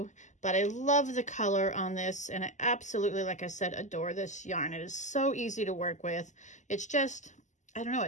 but I love the color on this, and I absolutely, like I said, adore this yarn. It is so easy to work with. It's just, I don't know,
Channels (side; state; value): right; late; 0.35 ms